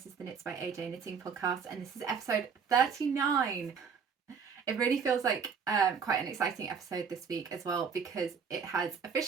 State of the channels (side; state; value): left; quieter; 6.2 dB